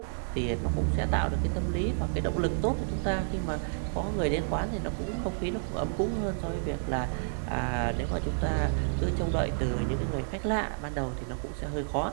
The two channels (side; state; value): left; silent; digital silence